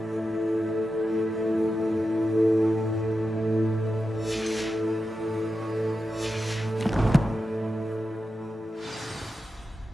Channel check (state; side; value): normal; both; correlation 0.90